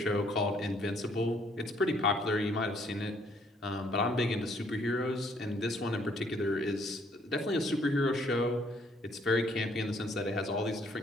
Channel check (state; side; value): normal; both; correlation 0.65